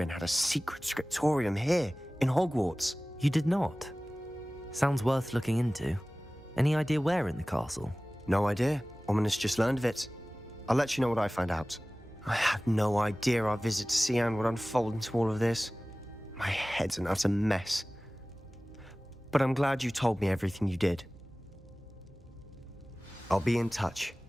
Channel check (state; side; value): normal; both; correlation 0.98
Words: had a secret scriptorium here, in Hogwarts? You did not? Sounds worth looking into. Any idea where in the castle? No idea. Ominous just learned of it. I'll let you know what I find out. I had no idea our visit to Sian would unfold into all of this. My head's an utter mess. But I'm glad you told me everything you did. I'll be in touch.